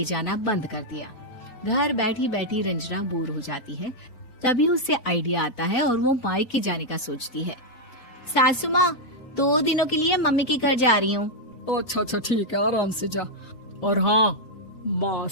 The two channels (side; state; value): right; late; 4.0 ms